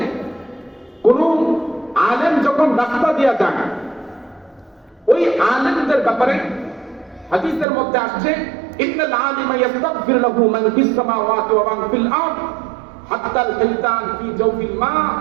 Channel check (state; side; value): drops out; left; at 7.7 s